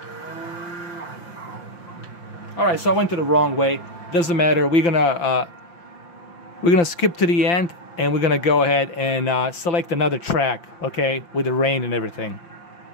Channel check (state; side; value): late; right; 5.8 ms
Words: Alright, so I went to the wrong way. Doesn't matter. We're gonna skip to the end, and we're gonna go ahead and select another track, okay, with the rain and everything.